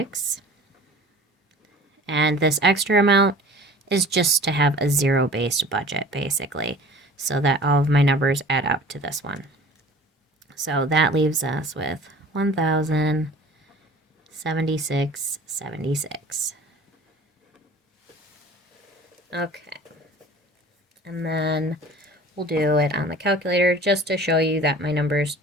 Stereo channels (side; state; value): both; normal; correlation 0.45